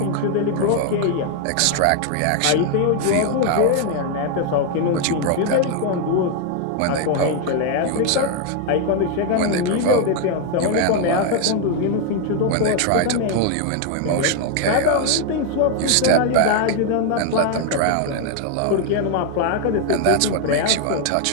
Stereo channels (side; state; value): both; different; correlation 0.00